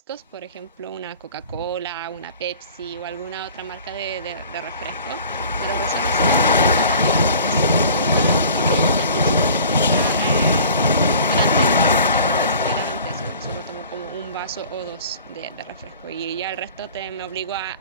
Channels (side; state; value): both; inverted; correlation -0.45